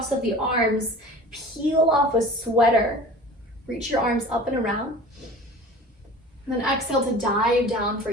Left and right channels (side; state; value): both; normal; correlation 0.40